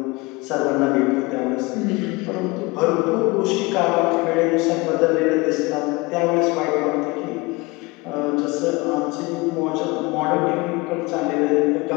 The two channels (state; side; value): quieter; right; 24.5 dB